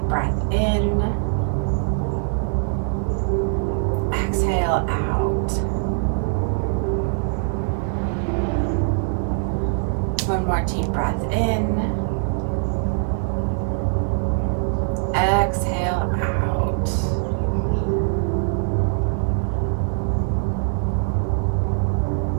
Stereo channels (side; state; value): left; silent; 56 dB below the other